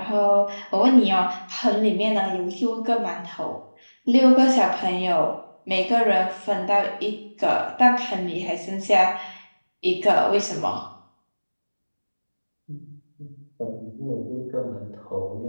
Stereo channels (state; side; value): inverted; both; correlation -1.00